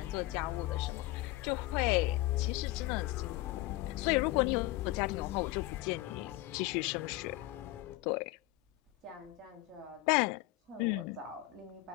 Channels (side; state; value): right; quieter; 18.0 dB